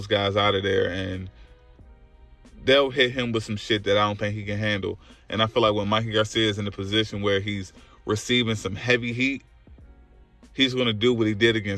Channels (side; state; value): both; identical; correlation 1.00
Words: guys out of there, and they'll hit him with some shit that I don't think he can handle. And I feel like when Mikey Garcia is in a position where he's receiving some heavy heat, he's going to do what he did